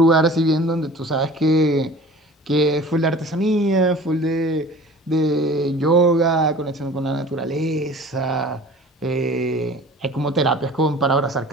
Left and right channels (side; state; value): both; normal; correlation 0.43